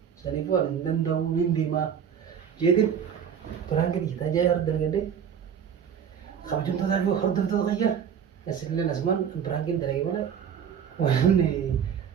Saniifuu ani hin danda'u hin deemaa. Jeetiin piraangina hiitaa jaayee hor dalgadee kabajamtootaa fi hordoftoota qayyaa. Asillee nasumaan piraangina dalagee malee waan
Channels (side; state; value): left; quieter; 8.0 dB